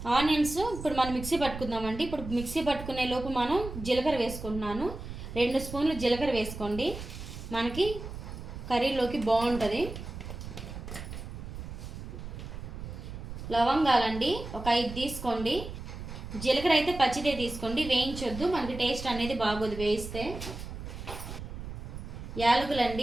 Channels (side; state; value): right; noise; rumble, 9 dB below the sound